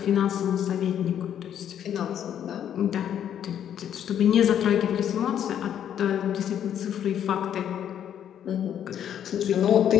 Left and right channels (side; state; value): right; quieter; 9.7 dB